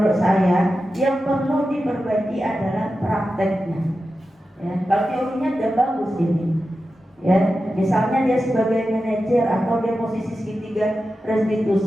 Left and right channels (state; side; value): normal; both; correlation 0.92